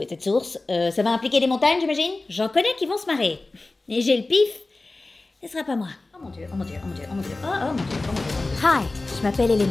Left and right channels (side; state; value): right; quieter; 3.2 dB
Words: est cette source. Ça va impliquer des montagnes, j'imagine. J'en connais qui vont se marrer. Et j'ai le pif. Ce sera pas moi. Oh mon Dieu, oh mon Dieu, oh mon Dieu, oh mon Dieu, oh mon Dieu, oh mon Dieu. Hi, je m'appelle